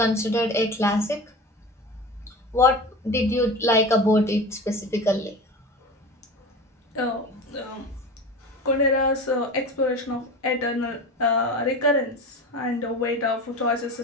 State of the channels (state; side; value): normal; both; correlation 0.31